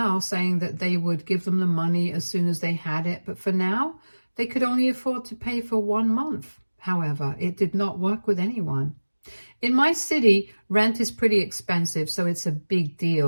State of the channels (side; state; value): both; inverted; correlation -1.00